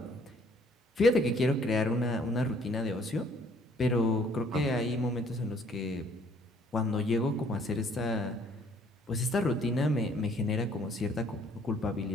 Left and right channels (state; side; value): normal; both; correlation 0.61